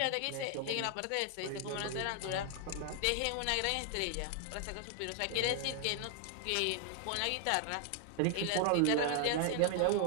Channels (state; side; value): different; both; correlation 0.00